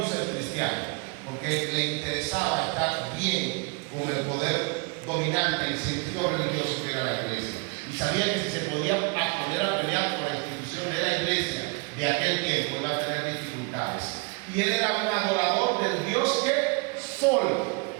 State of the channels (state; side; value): quieter; left; 31.7 dB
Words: ser cristiano porque le interesaba estar bien con el poder dominante y sentido religioso que era la iglesia. Y sabía que si se podía poner a pelear por la institución de la iglesia de aquel tiempo, iba a tener dificultades. Y él era un adorador del Dios que Sol.